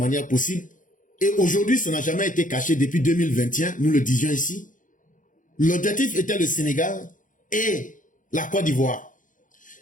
possibles. Et aujourd'hui, ça n'a jamais été caché depuis 2021, nous le disions ici. L'objectif était le Sénégal et la Côte d'Ivoire.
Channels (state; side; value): late; right; 0.38 ms